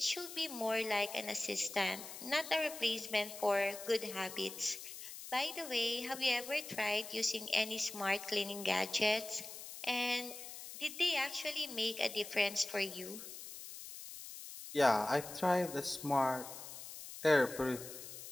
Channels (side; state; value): left; noise; hiss, 11 dB below the sound